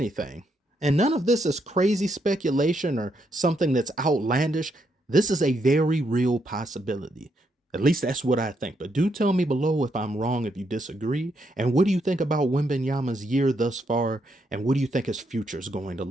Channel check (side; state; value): both; normal; correlation 0.78